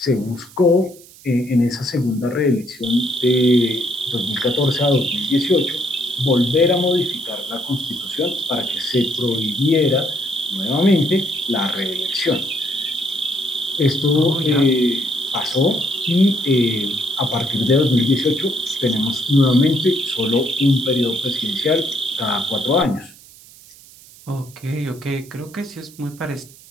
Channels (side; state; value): right; noise; hiss, 22 dB below the sound